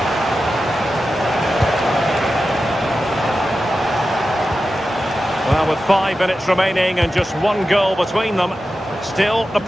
Well, with 5 minutes remaining and just one goal between them, still the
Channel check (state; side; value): normal; both; correlation 0.92